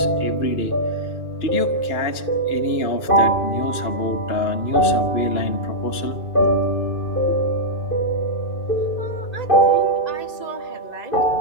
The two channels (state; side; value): late; right; 2.9 ms